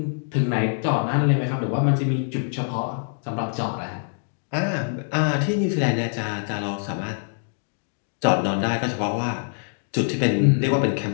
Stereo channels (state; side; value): silent; right; digital silence